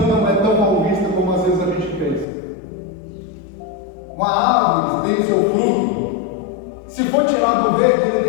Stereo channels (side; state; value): right; drops out; at 2.2 s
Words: não é tão mal vista como às vezes a gente pensa. Uma árvore tem o seu fruto, se for tirado do verde, ele